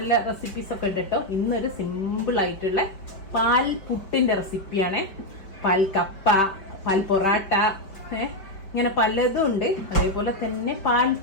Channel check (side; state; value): right; late; 5.2 ms